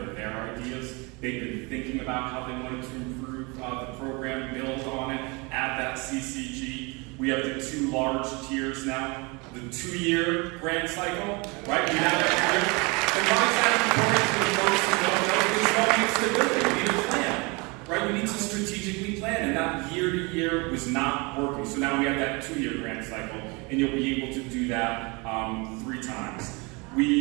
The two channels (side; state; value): left; quieter; 28.2 dB